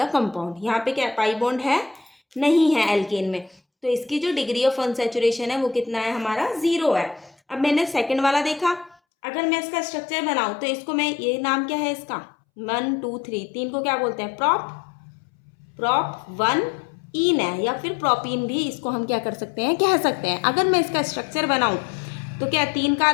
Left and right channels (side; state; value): right; drops out; at 9.0 s